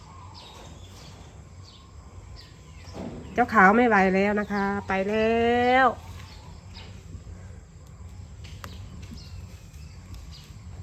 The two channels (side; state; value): both; identical; correlation 1.00